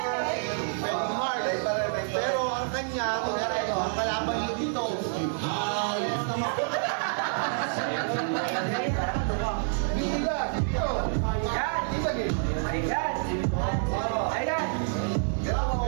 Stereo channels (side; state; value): left; silent; 59 dB below the other